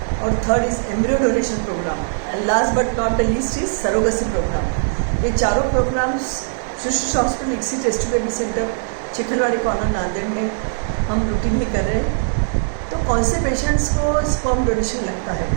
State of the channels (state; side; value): silent; left; digital silence